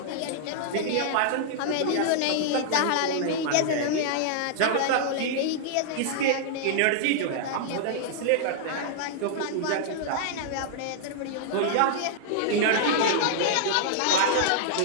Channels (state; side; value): different; both; correlation -0.01